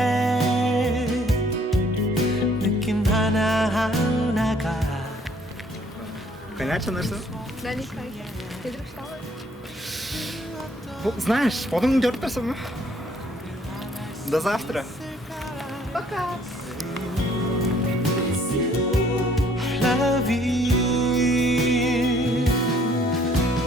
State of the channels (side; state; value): both; normal; correlation 0.61